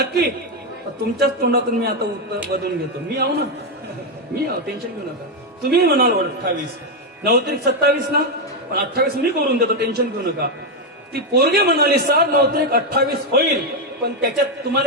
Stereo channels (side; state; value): both; normal; correlation 0.04